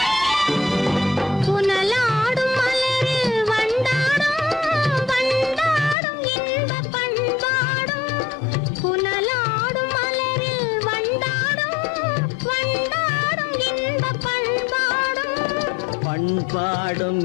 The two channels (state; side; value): drops out; right; at 6.0 s